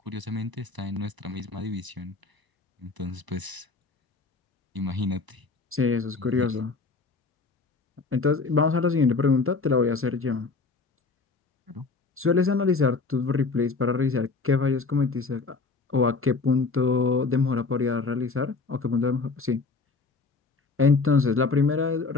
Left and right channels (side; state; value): right; quieter; 4.1 dB